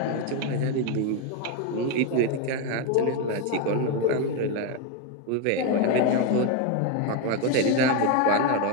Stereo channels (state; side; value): different; both; correlation 0.02